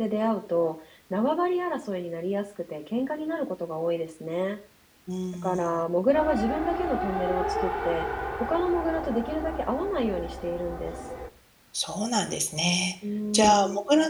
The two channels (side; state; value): both; identical; correlation 1.00